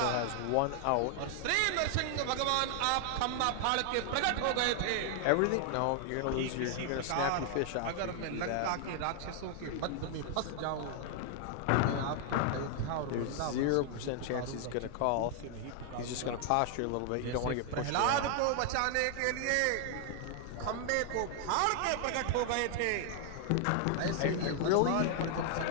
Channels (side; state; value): both; different; correlation 0.00